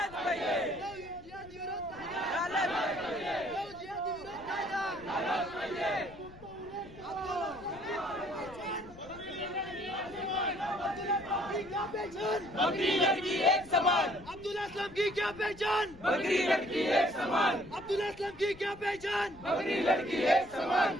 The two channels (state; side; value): noise; left; rumble, 20 dB below the sound